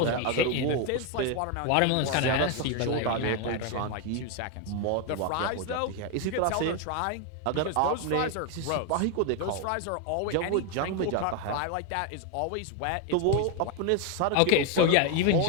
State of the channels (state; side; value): different; both; correlation 0.01